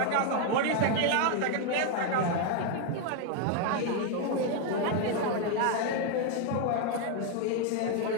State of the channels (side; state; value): both; different; correlation 0.01